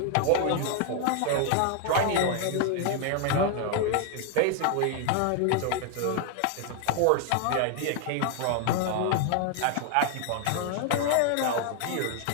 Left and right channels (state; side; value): different; both; correlation 0.00